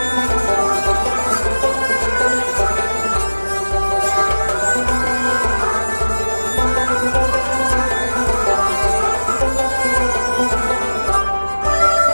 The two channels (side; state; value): both; inverted; correlation -1.00